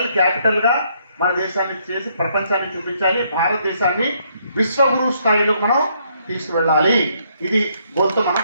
క్యాపిటల్గా మన దేశాన్ని చేసి ప్రపంచాన్ని చూపించాలి. భారతదేశాన్ని విశ్వగురు స్థాయిలో మనం తీసుకువెళ్ళాలి. ఇది గోల్తో మనం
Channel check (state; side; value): inverted; both; correlation -0.71